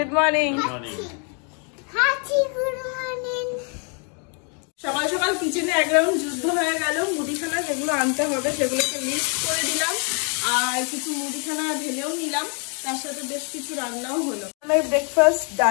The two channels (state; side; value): quieter; right; 38.7 dB